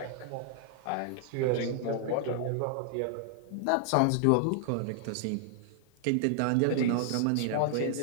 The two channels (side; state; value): both; different; correlation 0.00